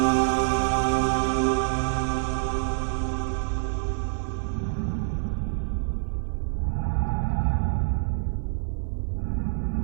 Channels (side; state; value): left; silent; digital silence